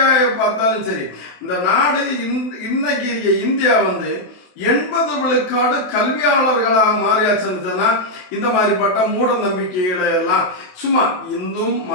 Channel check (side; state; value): right; late; 27 ms